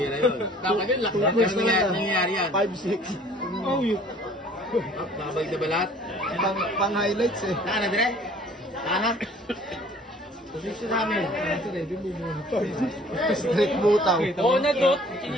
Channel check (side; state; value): both; normal; correlation 0.53